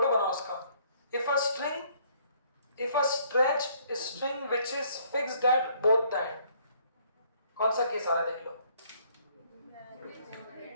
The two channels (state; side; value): inverted; both; correlation -0.63